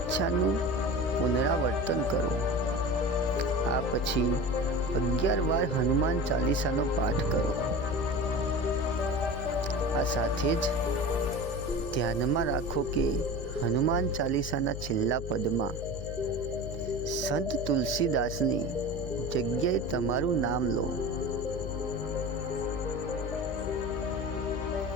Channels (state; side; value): noise; left; hum, 8 dB below the sound